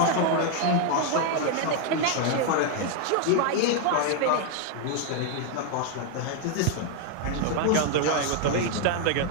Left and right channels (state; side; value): different; both; correlation 0.01